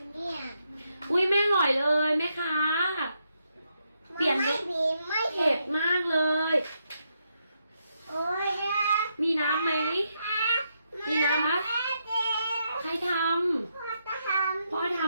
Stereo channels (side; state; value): both; inverted; correlation -0.80